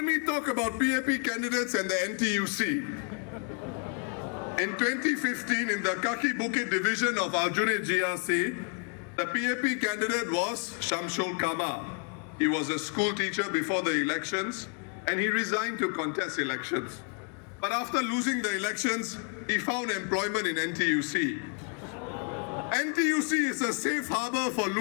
me talk about PAP candidates and the NTUC. In 2015, in the Kaki Bukit division of Aljunied GRC, the PAP candidate was Shamsul Kama. He was a school teacher before the elections and he resigned to contest elections. But after losing the elections, he found employment in NTUC. NTUC is a safe harbour for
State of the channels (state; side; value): quieter; right; 39.4 dB